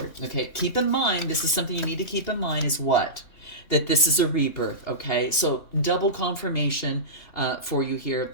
Okay, keep in mind, this is something you need to keep in mind, is what? That this is a rebirth. Okay, so double confirmation for you here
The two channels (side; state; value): right; late; 2.8 ms